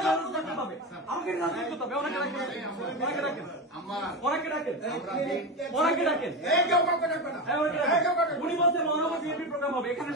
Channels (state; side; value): normal; both; correlation 0.19